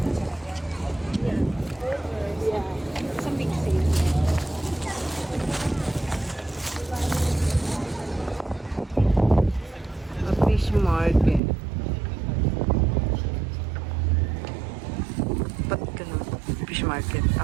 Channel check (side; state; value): left; drops out; at 11.4 s